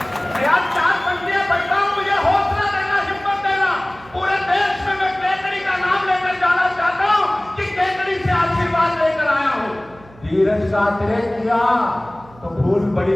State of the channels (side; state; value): right; noise; hum, 24 dB below the sound